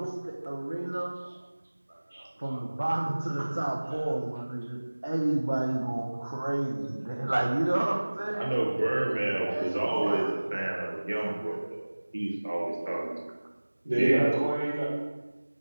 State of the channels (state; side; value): inverted; both; correlation -1.00